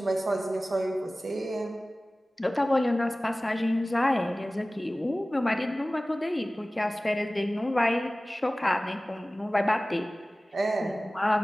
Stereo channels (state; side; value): normal; both; correlation 0.97